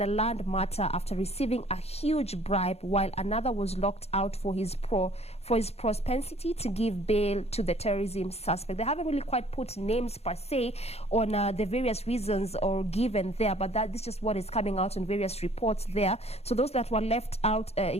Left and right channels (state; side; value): late; right; 0.30 ms